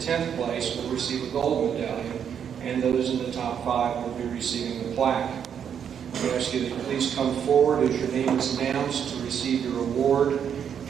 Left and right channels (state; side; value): quieter; left; 8.2 dB